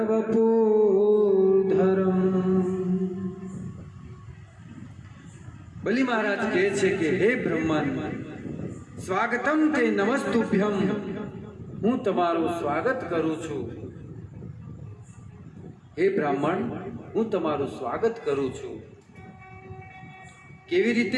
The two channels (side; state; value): both; identical; correlation 1.00